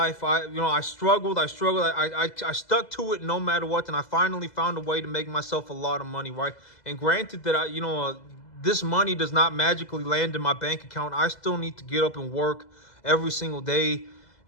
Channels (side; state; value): right; late; 2.0 ms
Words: I struggled. I stuck to it no matter what, and I finally found a way to make myself a lot of money, right? And granted that this money does not magically land in my bank account. I still need to get up and work every single day,